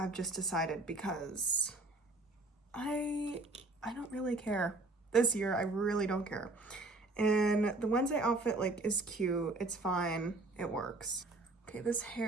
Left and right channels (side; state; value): left; quieter; 3.0 dB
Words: just decided, because I don't really care. This year, I really don't care. And the Wednesday outfit, is cute. It's fine. It works. Okay, this